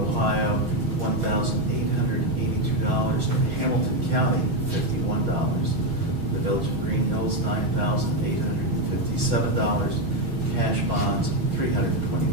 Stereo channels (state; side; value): late; left; 6.3 ms